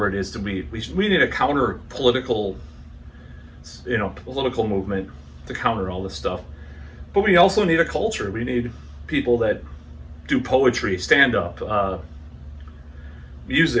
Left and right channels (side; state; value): both; identical; correlation 1.00